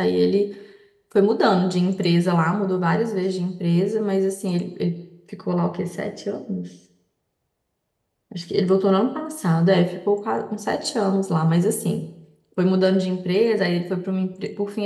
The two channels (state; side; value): identical; both; correlation 1.00